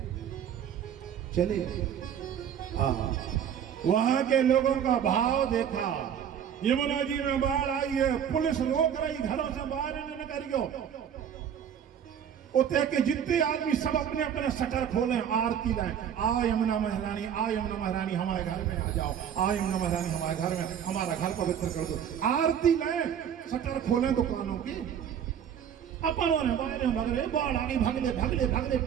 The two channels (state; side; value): quieter; left; 8.7 dB